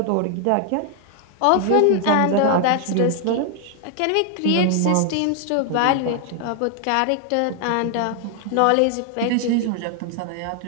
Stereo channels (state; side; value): different; both; correlation 0.00